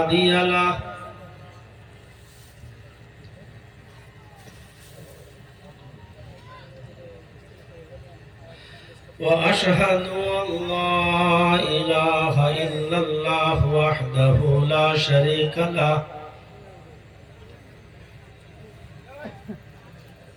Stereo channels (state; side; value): identical; both; correlation 1.00